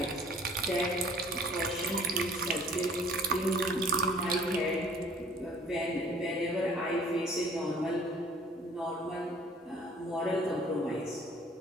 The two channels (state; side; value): normal; both; correlation 0.53